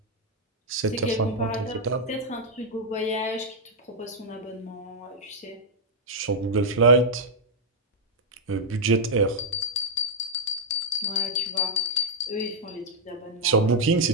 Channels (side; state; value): both; normal; correlation -0.04